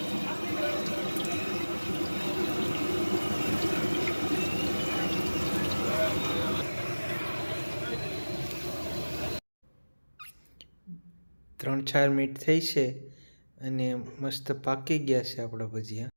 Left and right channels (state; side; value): inverted; both; correlation -1.00